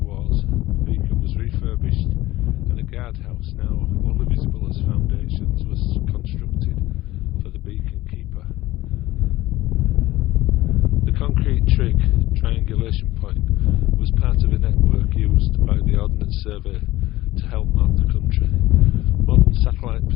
Wars, the beacon was refurbished and a guardhouse, now only visible as foundations, was constructed for the beacon keeper. The concrete trig triangulation point was part of a network used by the Ordnance Survey to help map the country. Modern satellite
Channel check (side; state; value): right; quieter; 17.0 dB